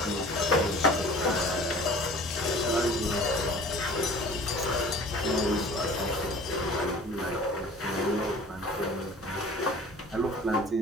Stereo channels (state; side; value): normal; both; correlation 0.45